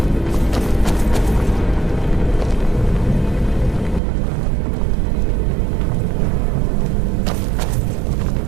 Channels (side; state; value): left; drops out; at 4.0 s